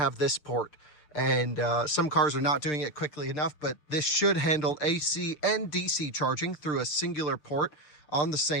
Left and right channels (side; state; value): right; late; 6.7 ms